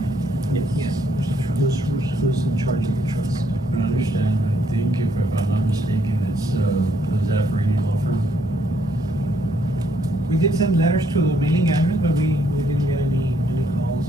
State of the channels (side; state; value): both; normal; correlation 0.71